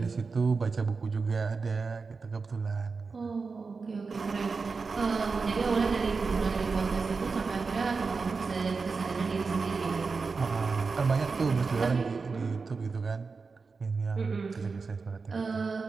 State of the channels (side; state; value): left; quieter; 4.6 dB